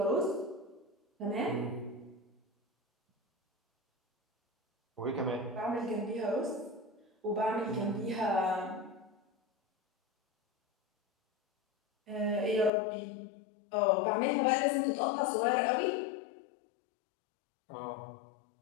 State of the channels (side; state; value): right; drops out; at 12.7 s